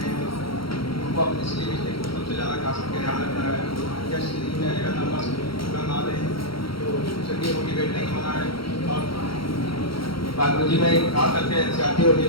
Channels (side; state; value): right; late; 0.74 ms